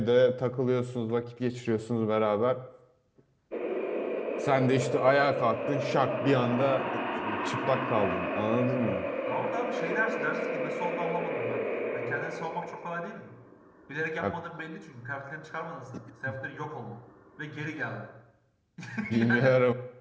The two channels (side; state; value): both; identical; correlation 1.00